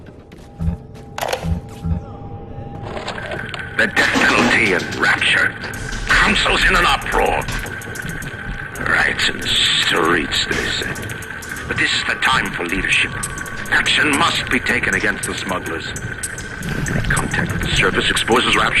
The death penalty and rapture. Council's in an uproar. Riots in the streets, they say. But this is the time for leadership. Action must be taken against the smugglers. Contact with the surface exposes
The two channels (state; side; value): identical; both; correlation 1.00